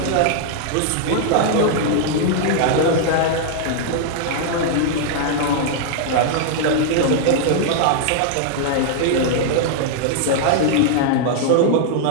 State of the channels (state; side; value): different; both; correlation -0.01